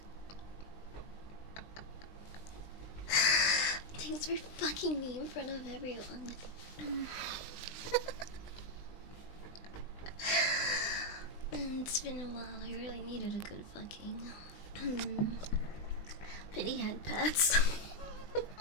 Thanks for fucking me in front of everyone. It's been a while. I really needed a good fucking. Pity head pats.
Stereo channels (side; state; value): right; late; 20 ms